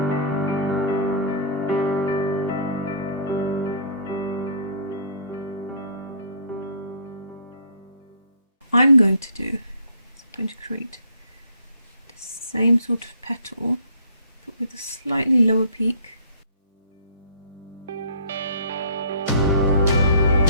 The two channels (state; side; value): inverted; both; correlation -0.52